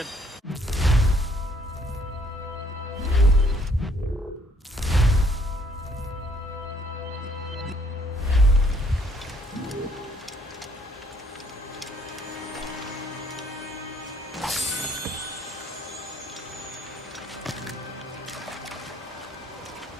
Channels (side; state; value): both; normal; correlation 0.64